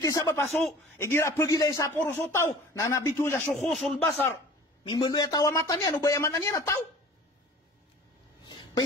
sa bapaso. Gira pergi lay sa puro so tau. Na nabitul sa sukhusul basar. Mimbaluya tawa mata niya. Nubayaman na niya na tau.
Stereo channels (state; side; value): normal; both; correlation 0.44